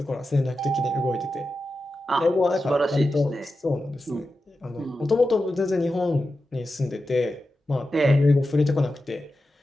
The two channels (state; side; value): normal; both; correlation 0.91